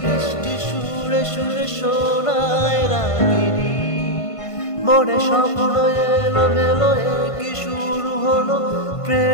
বৃষ্টি সুরে সুরে শোনায় রাগিনী। মনে স্বপ্ন এলো মেলো কি শুরু হলো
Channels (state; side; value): late; right; 1.5 ms